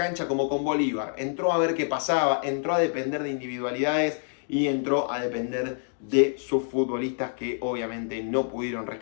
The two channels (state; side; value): silent; right; digital silence